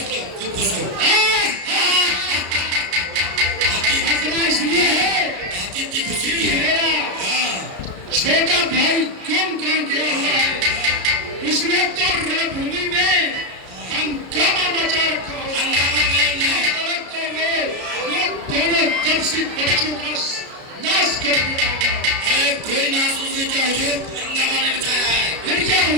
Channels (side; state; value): left; late; 33 ms